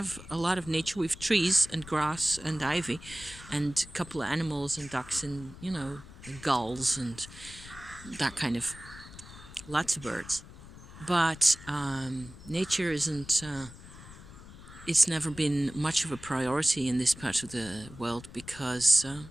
a lot of nature. We have trees and grass and ivy and a couple of animals and ducks and, gulls and that kind of, lots of birds. But nature isn't, it's never been much of a priority in this part of the world because,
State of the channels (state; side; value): noise; left; rumble, 17 dB below the sound